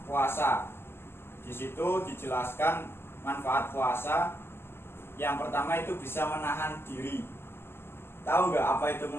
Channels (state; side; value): late; right; 0.11 ms